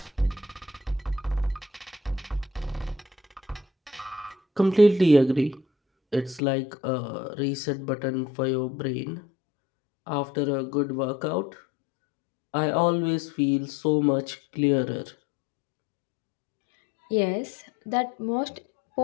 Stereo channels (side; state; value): right; drops out; at 6.4 s